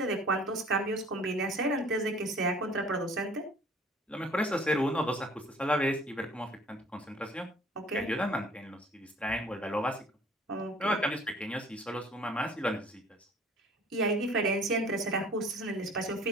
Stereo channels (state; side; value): normal; both; correlation 0.52